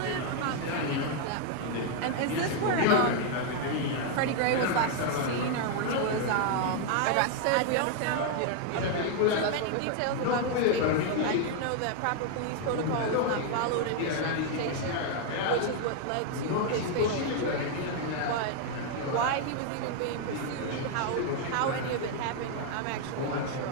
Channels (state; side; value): different; both; correlation 0.00